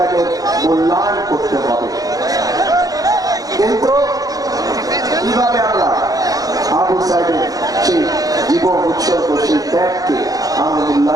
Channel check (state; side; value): late; left; 0.18 ms